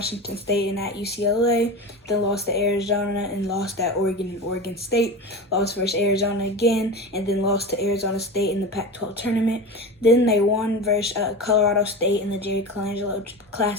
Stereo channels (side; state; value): both; normal; correlation 0.27